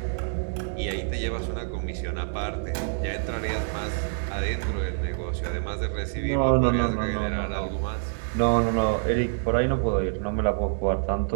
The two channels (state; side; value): silent; left; digital silence